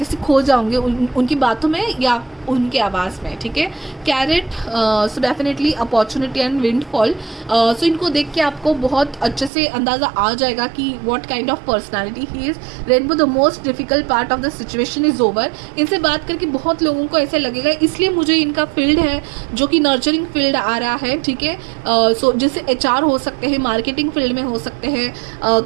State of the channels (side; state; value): left; drops out; at 9.5 s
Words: ऐसे खो जाओगे उनकी बातों में या उनके आवाज़ में, ठीक है। Carrot, so definitely opportunity and windfall. So इनको देख के आपको बहुत अच्छे से अंदाज़ा आ जाएगा कि what kind of personality he is. Rainbow, the most difficult part of the situation is over. इनसे बात करके बहुत लोगों को ऐसे लगेगा, इसलिए मुझे इनका फील्ड है जो कि नर्चरिंग फील्ड आ रहा है, ठीक है। सो जैसे HR हो सकते हैं, मार्केटिंग फील्ड में हो सकते हैं,